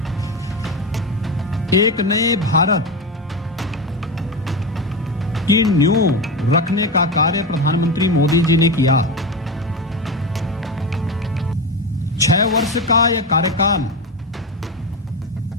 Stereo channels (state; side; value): normal; both; correlation 0.18